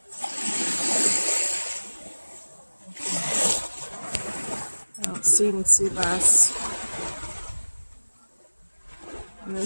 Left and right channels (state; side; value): inverted; both; correlation -1.00